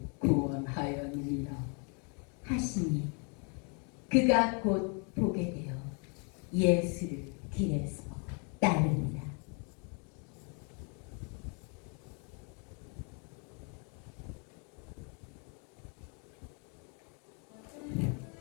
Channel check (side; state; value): right; quieter; 37.2 dB